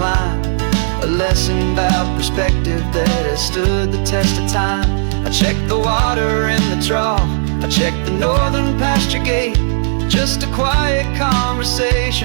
A lesson about perspective that has stood the test of time. I check the water in the trough, I check the northern pasture gate. Just a quiet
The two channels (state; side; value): silent; left; digital silence